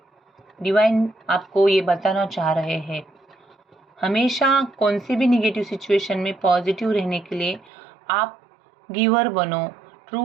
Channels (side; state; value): left; drops out; at 7.7 s